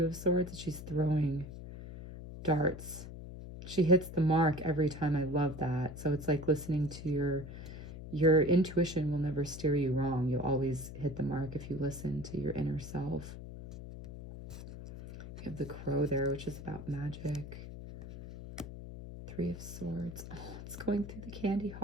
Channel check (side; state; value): left; noise; hum, 11 dB below the sound